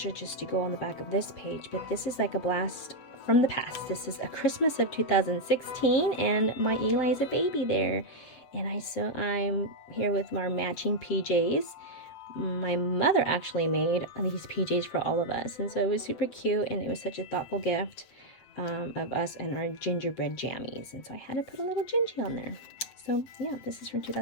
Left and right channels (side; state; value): right; late; 7.7 ms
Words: just to go on the back of this page, but this is like a blast from the past. This is a Christmas of 2016, and my Eli is a baby there. And I'm here with our matching PJs. My mother actually made these PJs for all of us, and so it was super cute, and it was such a thoughtful gift of us and our gingerbread jammies. And so I had to put a little gingy on there. So yeah, this is from